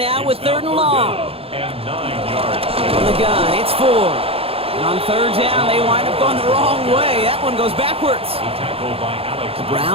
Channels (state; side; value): late; left; 0.28 ms